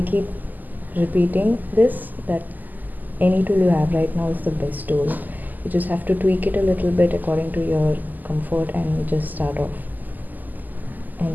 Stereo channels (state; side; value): late; left; 0.084 ms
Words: repeating this, that any tool you have right now is the best tool. You just have to tweak it a little bit according to your comfort and just start off.